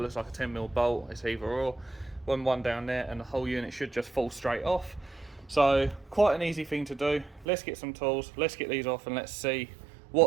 looks like a 10mm bolt. It's either or. One down there, and the whole unit should just fall straight off. So quite an easy thing to do. Let's get some tools, let's get these off, and let's see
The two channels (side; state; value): left; drops out; at 7.5 s